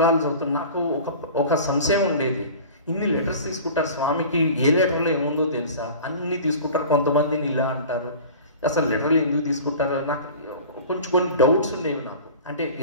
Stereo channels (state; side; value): inverted; both; correlation -0.39